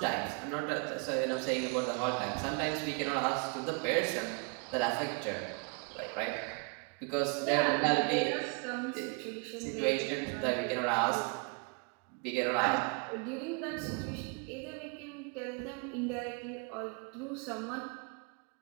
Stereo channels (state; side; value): quieter; left; 35.7 dB